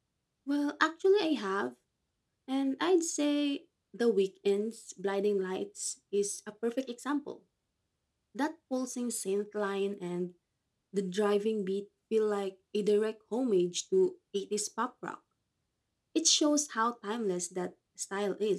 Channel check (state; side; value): identical; both; correlation 1.00